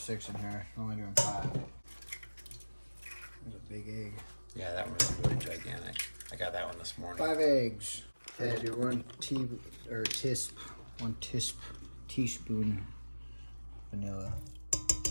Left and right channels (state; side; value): inverted; both; correlation -1.00